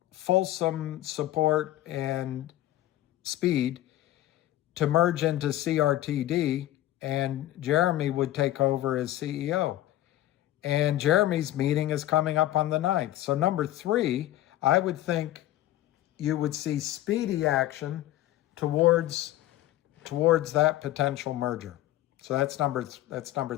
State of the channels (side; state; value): right; quieter; 14.5 dB